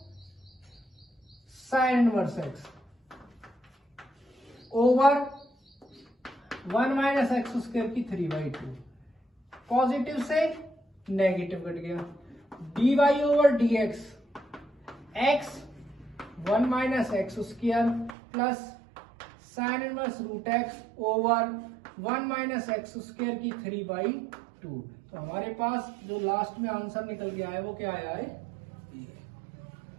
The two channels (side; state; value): left; drops out; at 18.2 s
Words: sine inverse x over 1 minus x square की 3/2, पॉजिटिव से नेगेटिव कट गया, dy over dx x 1 minus x square plus sine inverse root x over 1 minus x square की 3/2। तो हमारे पास जो लास्ट में आंसर निकल के आया वो क्या आया है, ये।